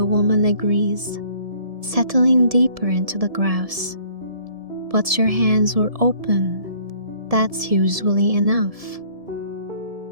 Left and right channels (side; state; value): left; late; 1.7 ms